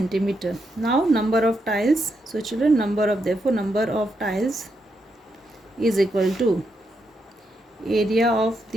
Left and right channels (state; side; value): normal; both; correlation 0.82